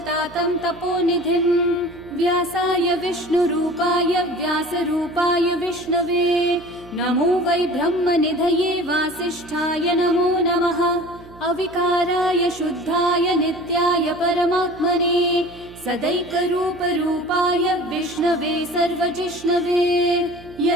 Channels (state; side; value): noise; right; hum, 21 dB below the sound